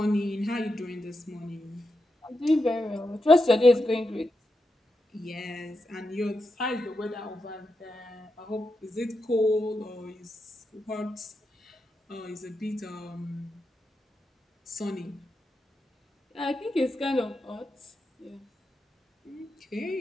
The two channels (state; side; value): normal; both; correlation 0.87